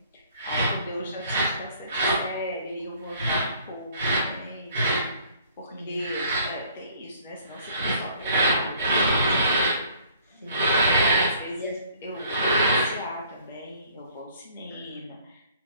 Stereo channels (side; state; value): both; inverted; correlation -0.57